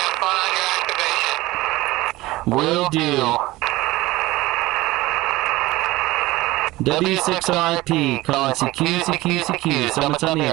fun on your activation. Will do. W6RIP calling CQ, CQ, CQ. Summits on the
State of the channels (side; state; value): left; quieter; 19.0 dB